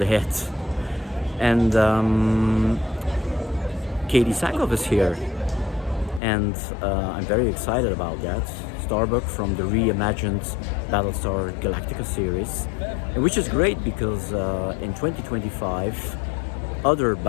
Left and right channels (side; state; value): right; drops out; at 6.2 s